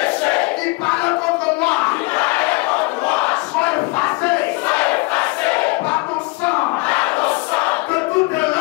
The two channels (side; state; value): right; quieter; 26.9 dB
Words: qui parle contre moi soit effacé par ton sang. Que toute